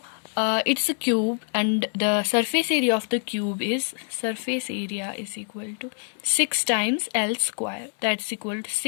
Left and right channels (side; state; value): right; silent; 56 dB below the other